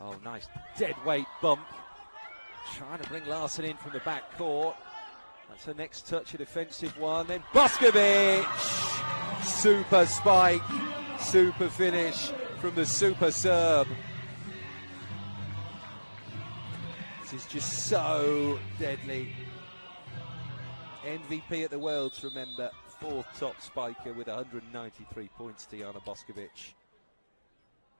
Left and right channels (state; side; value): inverted; both; correlation -1.00